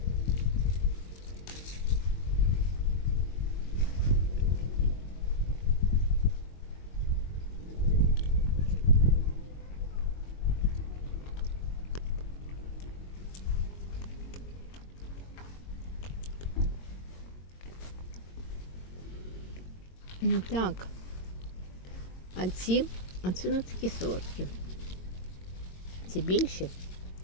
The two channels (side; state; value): right; late; 22 ms